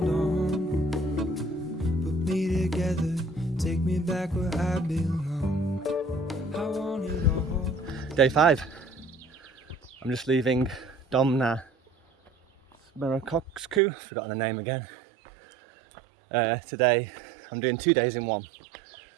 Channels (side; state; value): left; drops out; at 13.8 s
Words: on, put me together, take me back where I belong. I want it all. Day 5. I'm just leaving Domna Smrekovcu, forgotten the name again. Today I'm doing 2 days in one,